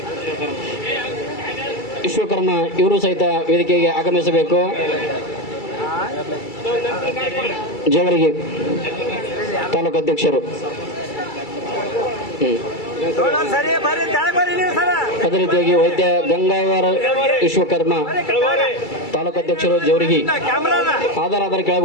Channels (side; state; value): right; late; 2.3 ms